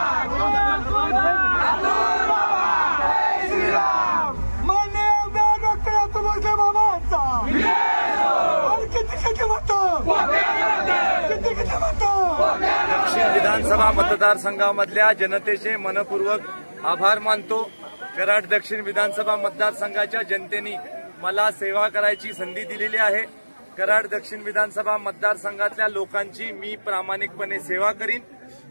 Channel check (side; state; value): both; inverted; correlation -1.00